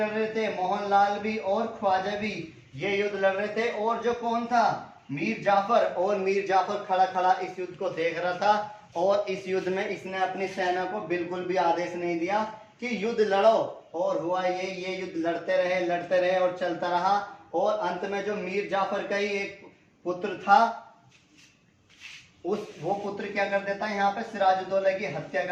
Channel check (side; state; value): both; identical; correlation 1.00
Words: रहे थे, मोहनलाल भी और ख्वाजा भी ये युद्ध लड़ रहे थे। और जो कौन था? मीर जाफर। और मीर जाफर खड़ा खड़ा इस युद्ध को देख रहा था। और इस युद्ध में इसने अपनी सेना को बिल्कुल भी आदेश नहीं दिया कि युद्ध लड़ो। और हुआ ये युद्ध लड़ते रहे और चलता रहा। और अंत में जो मीर जाफर का ही एक पुत्र था, वो पुत्र क्या कर देता है? यहाँ पे सिराजुद्दौला की हत्या